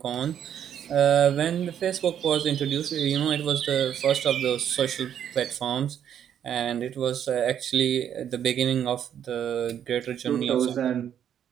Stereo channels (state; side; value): quieter; left; 9.4 dB